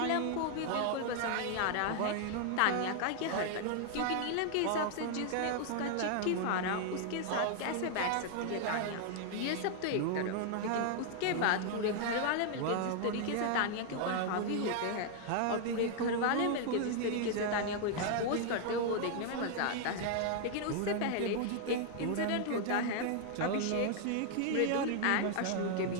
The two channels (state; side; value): different; both; correlation 0.00